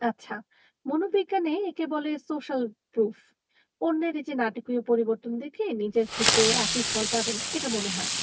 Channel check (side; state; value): both; identical; correlation 1.00